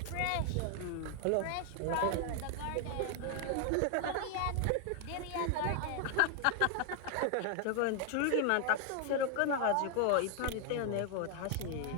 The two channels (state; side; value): different; both; correlation 0.00